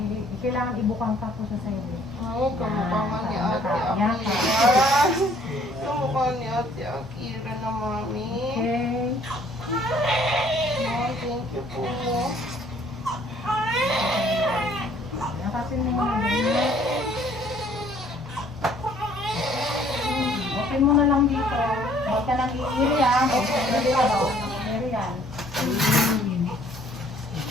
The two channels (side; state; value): both; normal; correlation 0.59